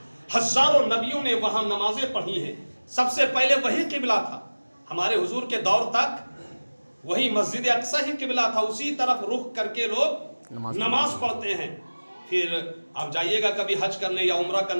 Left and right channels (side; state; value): both; inverted; correlation -1.00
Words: ہزاروں نبیوں نے وہاں نمازیں پڑھی ہیں. سب سے پہلے وہی قبلہ تھا. ہمارے حضور کے دور تک وہی مسجد اقصی ہی قبلہ تھا. اسی طرف رخ کر کے لوگ نماز پڑھتے ہیں. پھر آپ جائیے گا کبھی حج کرنے یا عمرہ